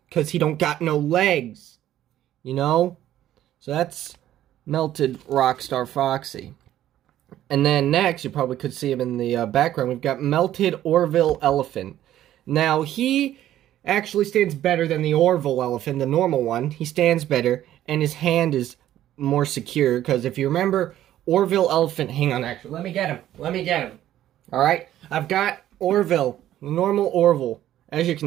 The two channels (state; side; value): quieter; left; 12.6 dB